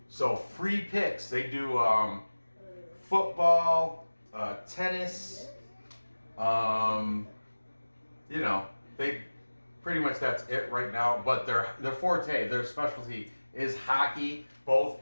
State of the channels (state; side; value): inverted; both; correlation -1.00